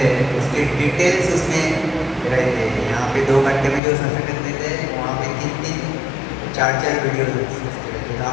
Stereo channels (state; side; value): drops out; right; at 3.8 s